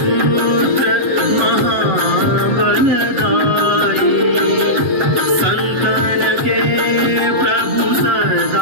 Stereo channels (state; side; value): late; left; 7.8 ms